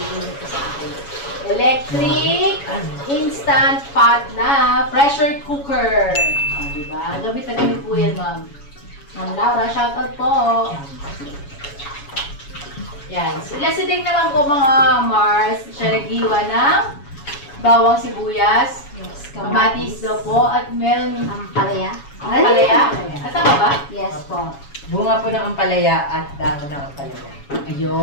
ko sa akin. Electric instant pot na pressure cooker. Diba? Gamit na gamit po yan, Ma'am. Ma'am Laura, shoutout po. Yan. So, lasitig naman po mga Mars. Siya naghiwa ng bawang sibuyas, kamatis daw po, at meron Ampalaya. ampalaya. Tama ba? Yes po. Bunga po ng ampalaya at dahon ng ampalaya.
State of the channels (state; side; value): late; right; 7.1 ms